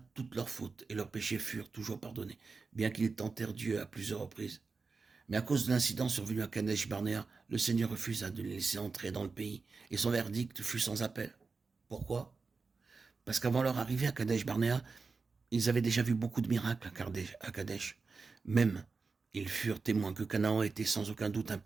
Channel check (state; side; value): quieter; left; 4.4 dB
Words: toutes leurs fautes et leurs péchés furent toujours pardonnés, bien qu'ils tentèrent Dieu à plusieurs reprises. Mais à cause de l'incident survenu à Kadesh Barnéa, le Seigneur refusa de les laisser entrer dans le pays, et son verdict fut sans appel. Pourquoi? Parce qu'avant leur arrivée à Kadesh Barnéa, ils avaient déjà vu beaucoup de miracles à Kadesh. Même, ils furent témoins que Canaan était sans aucun doute un